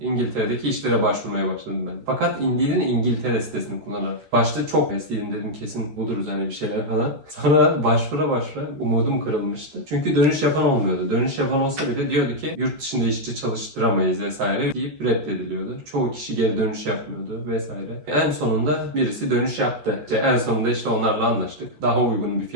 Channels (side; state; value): left; late; 13 ms